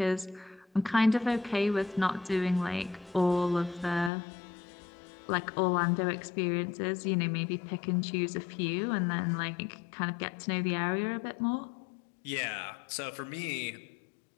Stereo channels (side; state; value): right; drops out; at 4.1 s